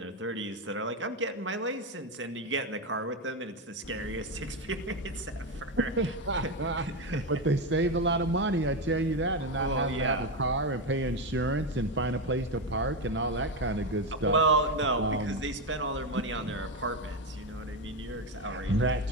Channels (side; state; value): both; normal; correlation 0.11